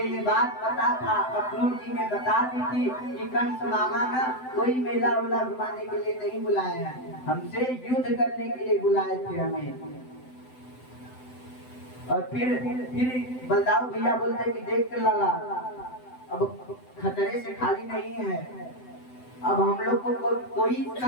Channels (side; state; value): right; late; 7.9 ms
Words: ये बात पता था, अक्रूर जी ने बता दी थी कि कंस मामा ना कोई मेला उला घुमाने के लिए नहीं बुलाए हैं, हमसे युद्ध करने के लिए बुलाए थे हमें। और फिर बलदाऊ भैया बोलते कि देख लाला, अब खतरे से खाली नहीं है, अब हम लोग को कोई